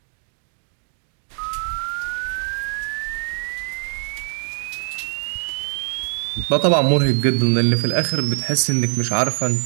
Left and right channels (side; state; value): left; silent; 56 dB below the other